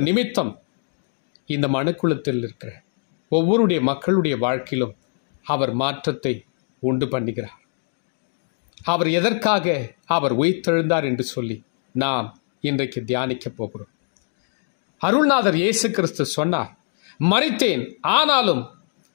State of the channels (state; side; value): silent; right; digital silence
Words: நிமித்தம் இந்த மனுக்குலத்தில் இருக்கிற ஒவ்வொருடைய மக்களுடைய வாழ்க்கையிலும் அவர் மாற்றத்தை உண்டு பண்ணுகிறார். அவர் எதற்காக அவர் உயிர்த்தெழுந்தார் என்று சொல்லி நாம் இன்றைக்கு தியானிக்க போகிறோம். அருள்நாதர் இயேசு கிறிஸ்து சொன்னார், மரித்தேன், ஆனாலும்